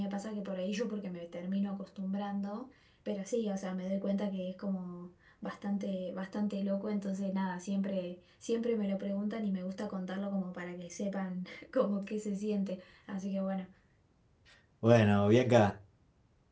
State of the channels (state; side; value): identical; both; correlation 1.00